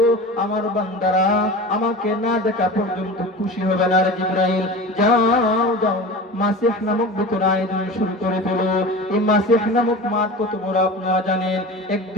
আমার বান্দারা আমাকে না দেখা পর্যন্ত খুশি হবে না। রে জিবরাইল যাও যাও, মাসিহ নামক ভিতরে আয়োজন শুরু করে ফেলো। এই মাসিহ নামক মাঠ কত বড় আপনারা জানেন।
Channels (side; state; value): both; normal; correlation 0.33